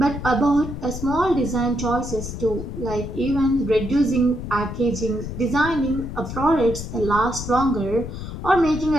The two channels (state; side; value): noise; left; rumble, 8 dB below the sound